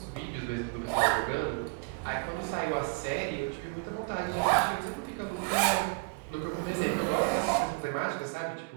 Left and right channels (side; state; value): left; quieter; 31.9 dB